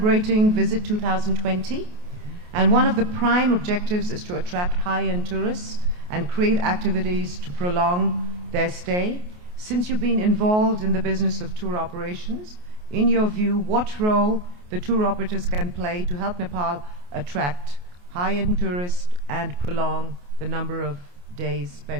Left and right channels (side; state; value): left; late; 28 ms